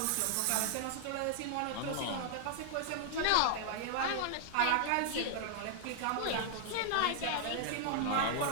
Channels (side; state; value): both; different; correlation -0.01